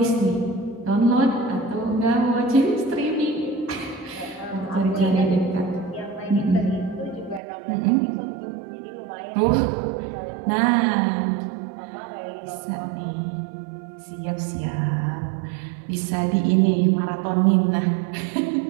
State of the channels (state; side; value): drops out; left; at 7.4 s